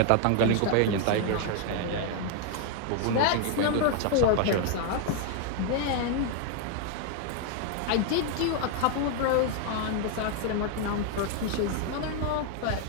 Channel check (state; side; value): different; both; correlation 0.00